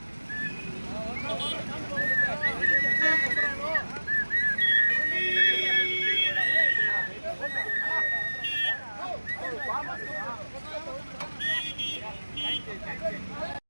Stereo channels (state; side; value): inverted; both; correlation -1.00